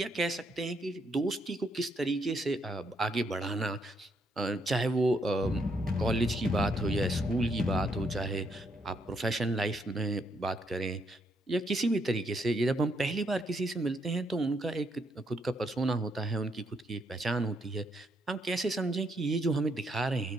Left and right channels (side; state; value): both; normal; correlation 0.75